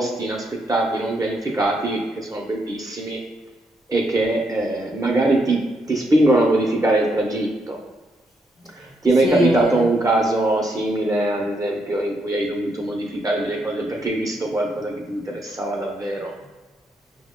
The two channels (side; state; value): both; normal; correlation 0.77